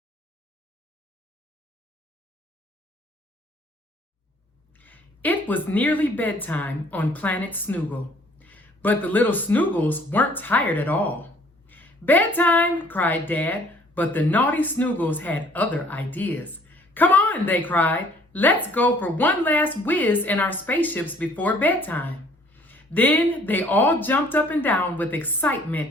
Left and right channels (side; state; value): both; normal; correlation 0.58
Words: It was nearly bedtime on planet Snoogle, but the little Snoogles weren't tired at all. "Bedtime!" cried Dad, but the naughty Snoogles had other ideas. "Come on," they cried. "Let's go for one last whiz in our spaceships before bedtime." Then they all jumped up and down with